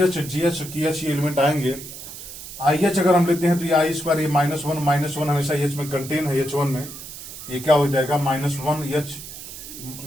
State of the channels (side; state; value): right; noise; hiss, 12 dB below the sound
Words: GH, KH ये एलिमेंट आएंगे। IH अगर हम लेते हैं तो ये I², ये -1 हमेशा H में कंटेन है, H1 में, ये क्या हो जाएगा, -1